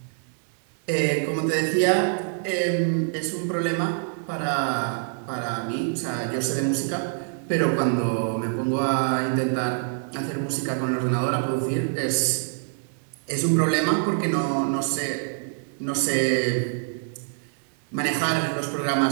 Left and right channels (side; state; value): left; silent; digital silence